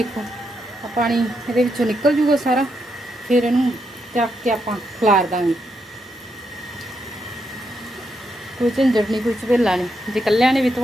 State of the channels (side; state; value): both; normal; correlation 0.81